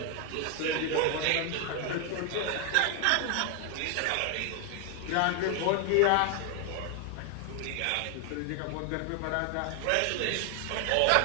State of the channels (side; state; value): both; different; correlation 0.00